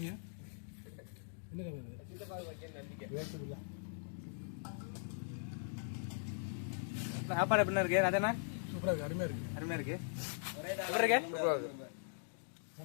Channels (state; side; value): silent; right; digital silence